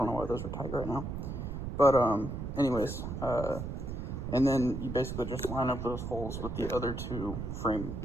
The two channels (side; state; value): right; noise; rumble, 5 dB below the sound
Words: know why those are tight right now, but anyways, and then you basically just line up those holes with the other 2 frame